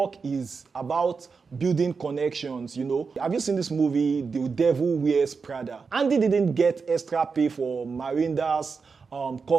is about building connections, you know. Have you seen this movie, The Devil Wears Prada? Andy didn't get extra pay for Miranda's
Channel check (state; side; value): quieter; left; 5.1 dB